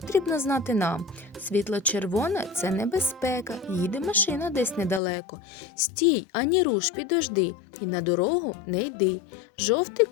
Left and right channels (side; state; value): right; drops out; at 5.0 s